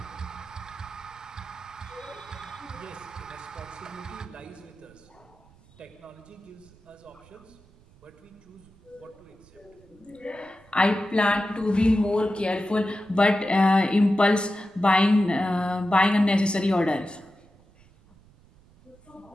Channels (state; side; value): noise; right; rumble, 27 dB below the sound